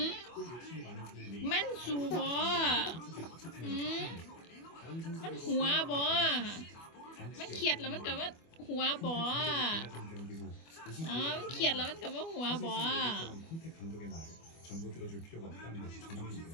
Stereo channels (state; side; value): late; right; 25 ms